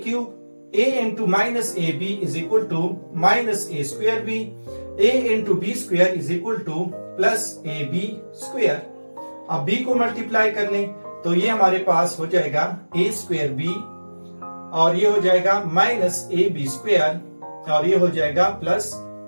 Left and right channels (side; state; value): both; inverted; correlation -1.00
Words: cube, a into minus a b is equal to minus a square b, a into b square is equal to plus a b square. अब b को multiply कर लें तो ये हमारे पास हो जाएगा a स्क्वायर बी, और ये हो जाएगा माइनस ए बी स्क्वायर, और ये हो जाएगा प्लस